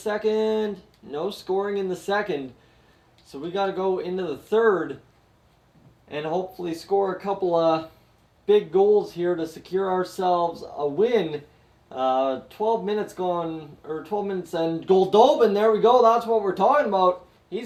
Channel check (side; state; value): both; identical; correlation 1.00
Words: No scoring in the second. So we got to go into the third and hopefully score a couple of big goals here to secure ourselves a win. 12 minutes gone, or 12 minutes, and Goldobin, there we go, that's what we're talking about.